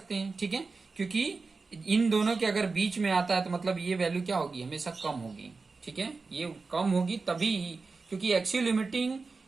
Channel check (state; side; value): quieter; left; 4.2 dB